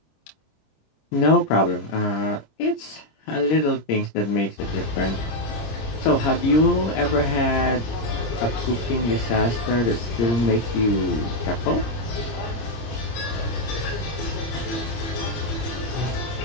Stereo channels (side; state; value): right; late; 26 ms